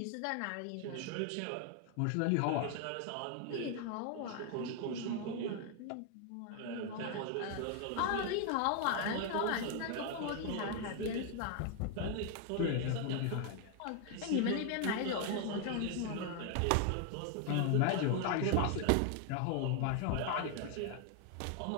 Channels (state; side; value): different; both; correlation 0.00